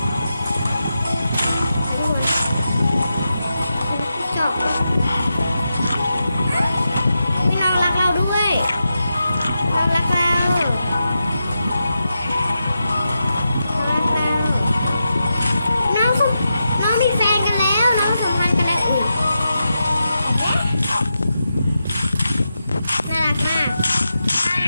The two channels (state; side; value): inverted; both; correlation -0.88